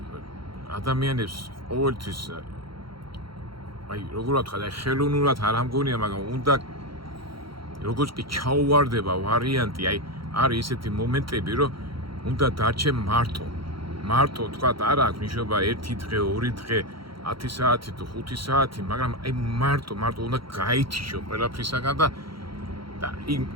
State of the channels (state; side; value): late; left; 0.74 ms